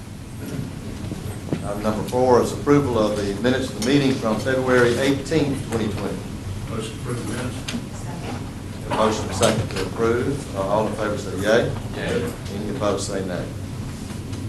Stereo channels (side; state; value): both; identical; correlation 1.00